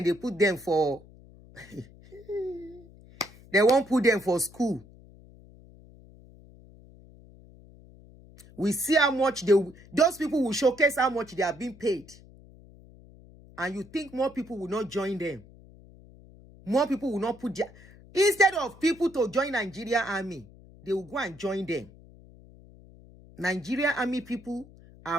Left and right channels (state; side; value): noise; left; hum, 22 dB below the sound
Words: they put them for they won't put them for school. We see how much those people will showcase how much they are being paid. And you think more people will not join them. More people will not put their... Instead of people to join Nigeria Army, they will go and join them. Nigeria Army people